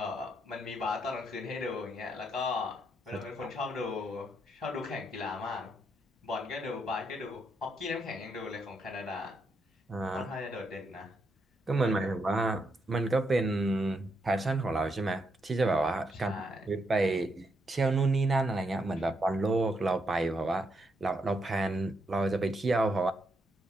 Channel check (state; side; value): normal; both; correlation 0.79